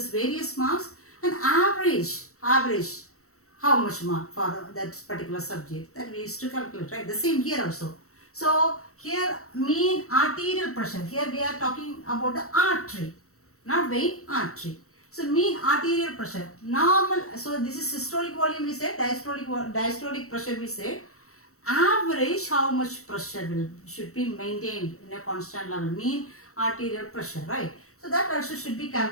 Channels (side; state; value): right; late; 0.64 ms